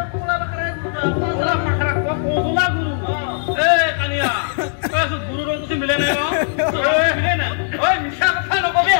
পাখরা ওলা পাখরা ওলা গুরু কানিয়া কইছো গুরু রং কিছু মিলে নাই মিলে না ওই মিছা কথা নকবি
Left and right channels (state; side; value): silent; right; 65 dB below the other